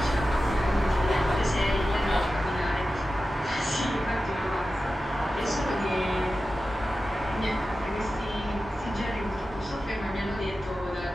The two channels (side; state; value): both; normal; correlation 0.93